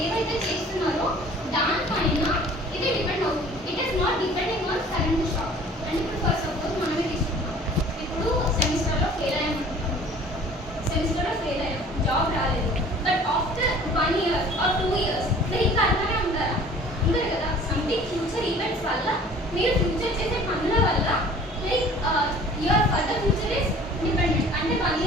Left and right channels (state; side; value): normal; both; correlation 0.49